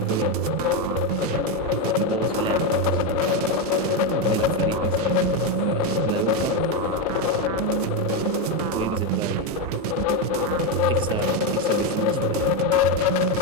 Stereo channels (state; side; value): normal; both; correlation 0.06